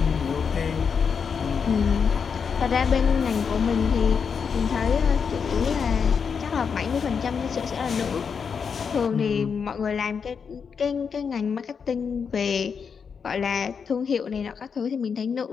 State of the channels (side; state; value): right; quieter; 6.2 dB